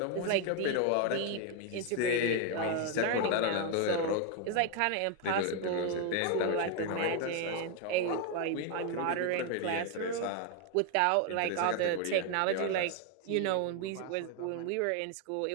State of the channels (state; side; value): different; both; correlation 0.01